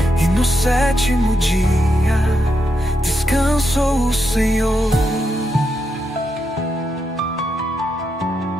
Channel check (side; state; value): both; normal; correlation 0.83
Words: E no sétimo dia descansou o Senhor.